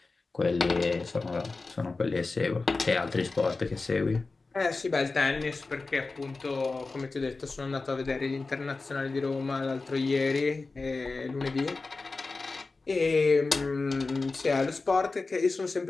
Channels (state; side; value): quieter; right; 3.8 dB